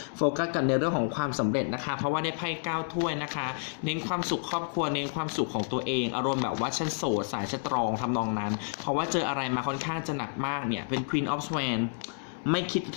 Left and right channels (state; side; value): silent; right; 58 dB below the other